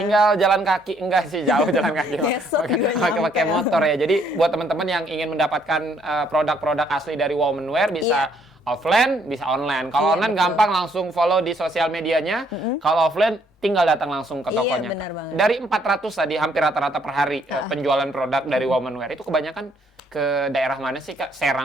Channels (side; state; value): both; normal; correlation 0.67